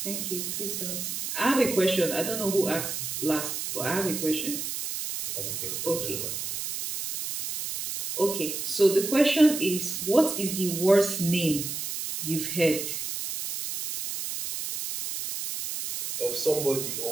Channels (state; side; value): noise; right; hiss, 4 dB below the sound